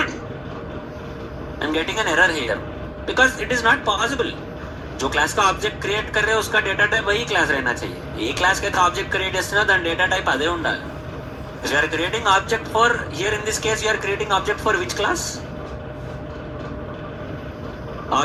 I am getting an error here because it is not possible. जो class का object create कर रहे हैं उसका data type वही class रहना चाहिए. ఏ class కి ఆబ్జెక్ట్ క్రియేట్ చేస్తున్నా దాని డేటా టైప్ అదే ఉండాలి. If you are creating object for, here in this case you are creating object for which class?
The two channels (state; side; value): identical; both; correlation 1.00